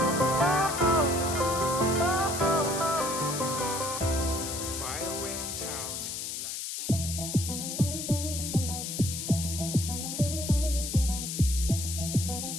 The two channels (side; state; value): left; noise; hiss, 5 dB below the sound